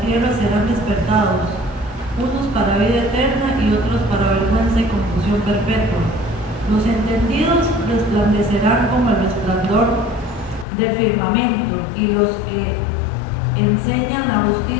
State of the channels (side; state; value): right; drops out; at 10.7 s